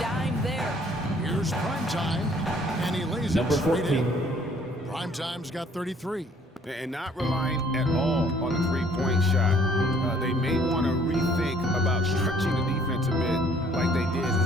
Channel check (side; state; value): both; normal; correlation 0.59